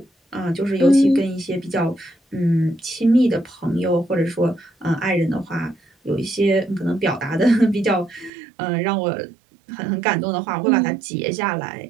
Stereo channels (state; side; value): drops out; left; at 8.3 s